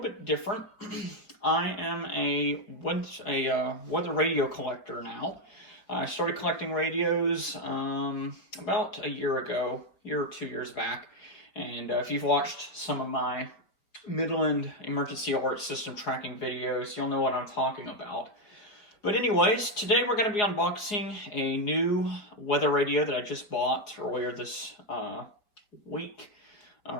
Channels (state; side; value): late; right; 4.8 ms